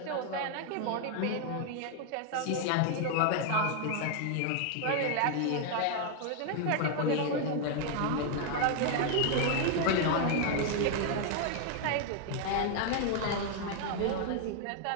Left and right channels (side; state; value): both; different; correlation 0.00